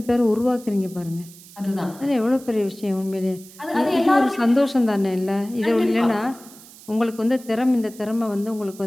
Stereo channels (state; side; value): noise; right; hiss, 20 dB below the sound